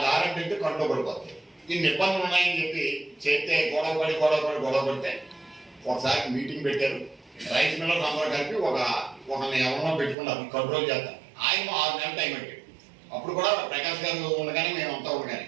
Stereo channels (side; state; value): left; drops out; at 10.2 s